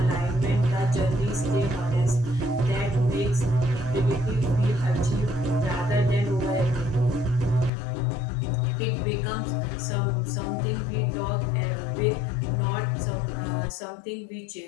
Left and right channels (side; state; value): right; drops out; at 7.7 s